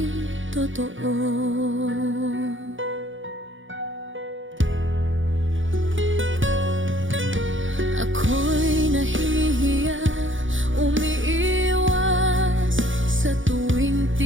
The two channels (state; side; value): late; left; 0.56 ms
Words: totoo. Ako'y nahihiya, umiiwas sa tuwing